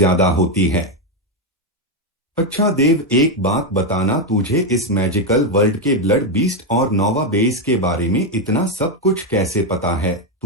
होती है। अच्छा देव, एक बात बताना, तुझे इस मैजिकल वर्ल्ड के ब्लड बीस्ट और नोवा बेस के बारे में इतना सब कुछ कैसे पता है?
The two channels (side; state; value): both; normal; correlation 0.05